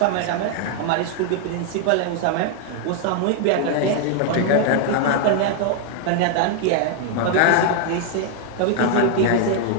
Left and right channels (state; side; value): different; both; correlation 0.00